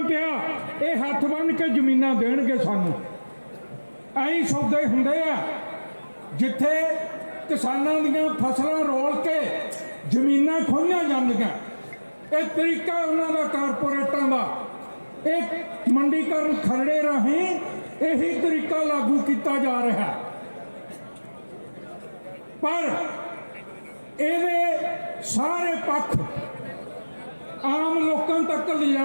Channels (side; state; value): both; inverted; correlation -1.00